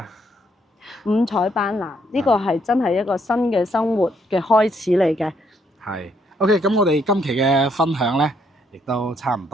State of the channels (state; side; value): normal; both; correlation 0.71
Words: 五彩斑斕，呢個係真係一個新嘅生活嘅開始嚟嘅。係 OK，咁我哋今期嘅分享咧，亦都差唔